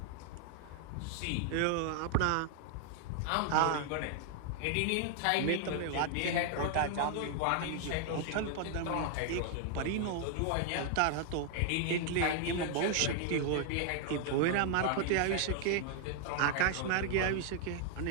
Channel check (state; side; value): different; both; correlation 0.00